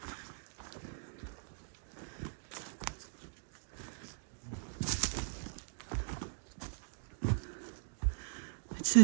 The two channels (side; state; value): left; silent; digital silence